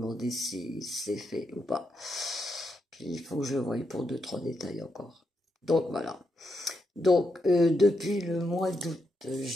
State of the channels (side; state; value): both; normal; correlation 0.83